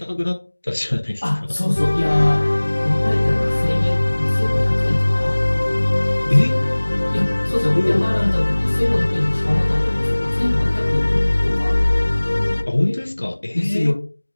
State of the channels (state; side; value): inverted; both; correlation -1.00